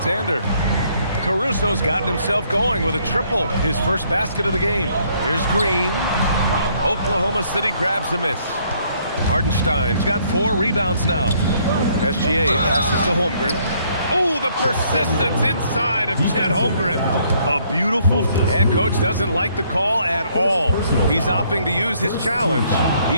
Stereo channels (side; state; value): both; inverted; correlation -0.66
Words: Caruso's gotten himself going with a triple, his first basket of the game. Here's Green. Oklahoma City grabs a miss. Hartenstein's got 4 rebounds now. SGA passes to Holmgren. Oh, the persistence inside of Chet Holmgren. A beautiful. And coach doesn't like the call at all. He's opting to use his challenge.